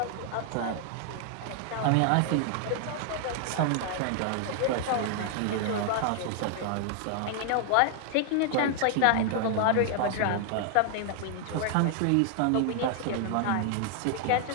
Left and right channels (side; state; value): both; different; correlation 0.00